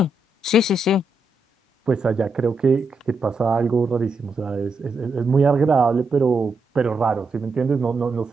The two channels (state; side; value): normal; both; correlation 0.84